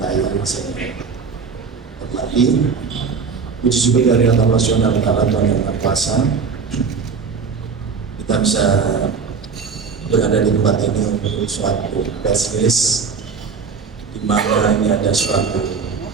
saya hormati. Puji syukur dari Allah Subhanahu wa Ta'ala, Tuhan Yang Maha Kuasa, kita bisa berada di tempat ini untuk suatu press release di mana ini ada suatu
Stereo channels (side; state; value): left; quieter; 5.5 dB